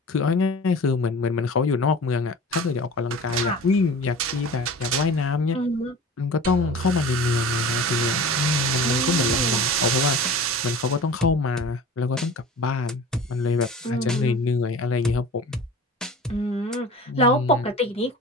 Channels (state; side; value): normal; both; correlation 0.38